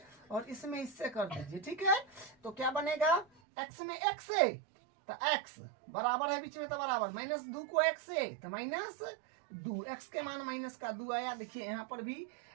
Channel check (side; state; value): left; drops out; at 3.2 s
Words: और इसमें इससे कर दीजिए, ठीक है। तो क्या बनेगा, x में x है तो x बराबर है बीच में तो बराबर, माइनस 2 को x से तो माइनस 2, x के मान माइनस का 2 आया। देखिए यहाँ पर भी